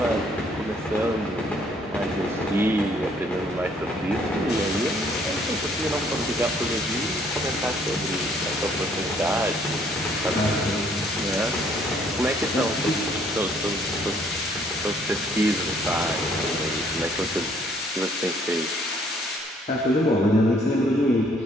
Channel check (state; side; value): normal; both; correlation 0.64